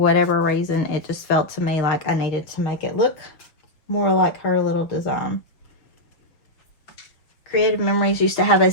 reason, it just felt to me like I needed to make it look more like her little design. Creative Memories used to have a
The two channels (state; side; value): late; right; 6.1 ms